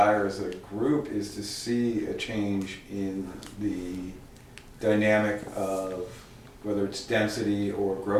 as a group is to see a change in the dynamic of whether it's density or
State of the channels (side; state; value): both; identical; correlation 1.00